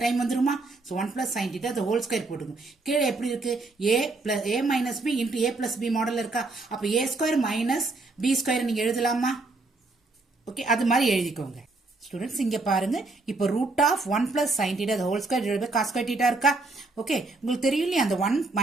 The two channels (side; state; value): left; quieter; 3.4 dB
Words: டைம் வந்துருமா. So 1 plus sin theta the whole square போட்டுக்கோங்க. கீழே எப்படி இருக்கு, a minus b into a plus b model இருக்கா. அப்போ a square minus b square நீங்க எழுதலாமா. ஓகே, அது மாதிரி எழுதிக்கோங்க. ஸ்டூடெண்ட்ஸ் இங்க பாருங்க, இப்போ root of 1 plus sin theta the whole square divided by cos square theta இருக்கா. ஓகே, உங்களுக்கு தெரியும் இல்லையா, அந்த 1